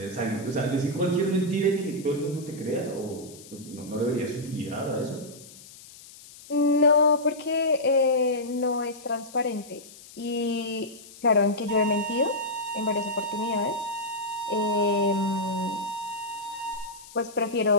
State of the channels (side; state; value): left; noise; hiss, 19 dB below the sound